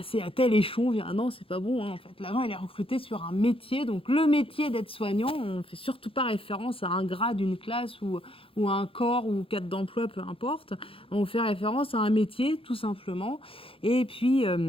à tel échelon. Ah non, c'est pas bon, hein, en fait. L'agent, il est recruté sur un métier. Donc, le métier d'aide-soignant, on ne fait surtout pas référence à un grade, une classe ou à un corps ou cadre d'emploi, peu importe. On fait référence à un métier, tout simplement. Et puis,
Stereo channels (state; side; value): late; right; 0.27 ms